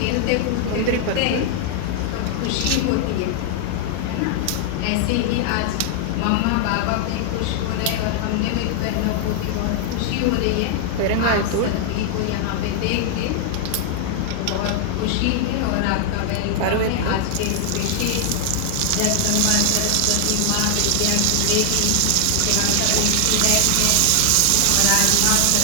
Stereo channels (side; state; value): both; different; correlation 0.00